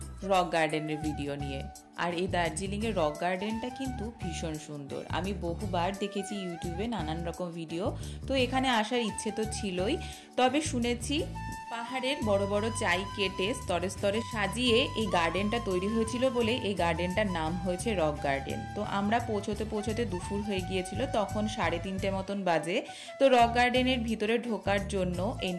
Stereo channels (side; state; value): both; identical; correlation 1.00